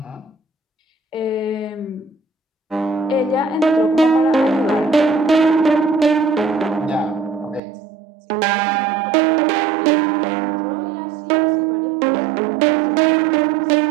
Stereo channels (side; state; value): left; drops out; at 7.6 s